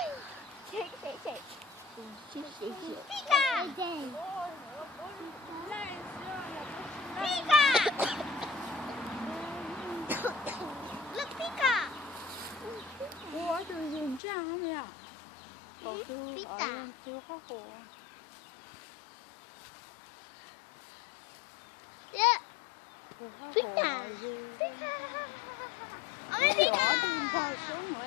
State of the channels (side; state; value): right; drops out; at 14.2 s